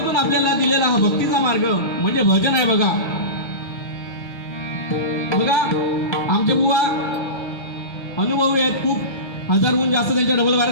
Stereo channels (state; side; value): late; right; 1.3 ms